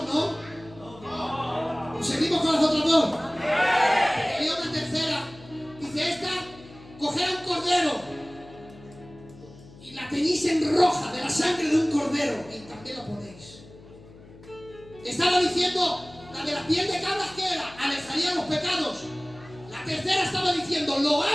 ¿no? Seguimos con las otras dos. Y una tercera. Dice esta, coged un cordero y la teñís en roja de la sangre de un cordero y también la ponéis. Estaba diciendo, la de la piel de cabras que era, alejaría los pecados. La tercera estaba diciendo, lo va a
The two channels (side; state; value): left; noise; hum, 21 dB below the sound